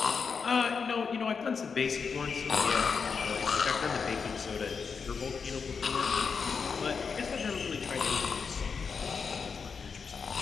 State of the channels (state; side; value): quieter; right; 5.6 dB